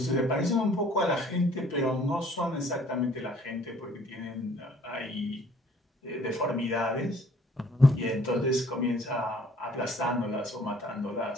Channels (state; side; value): normal; both; correlation 0.57